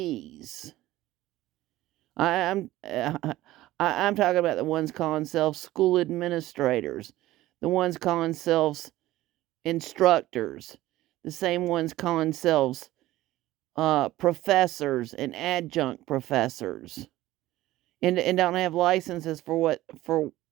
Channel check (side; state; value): left; quieter; 16.2 dB